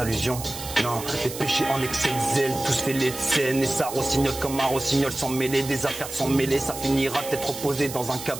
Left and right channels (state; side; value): noise; right; hiss, 10 dB below the sound